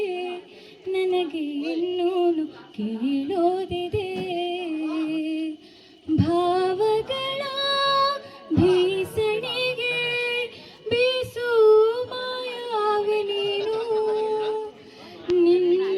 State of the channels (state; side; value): identical; both; correlation 1.00